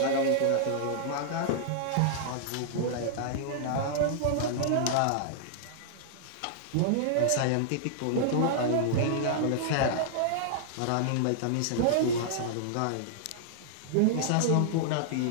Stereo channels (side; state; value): both; different; correlation -0.01